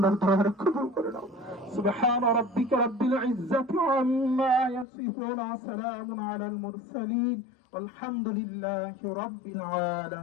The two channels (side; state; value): right; drops out; at 4.9 s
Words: দয়া কবুল করে নাও সুবহান রাব্বিকা রাব্বিল ইজ্জাতি আম্মা ইয়াসিফুন সালামুন আলাল মুরসালিন والحمد لله رب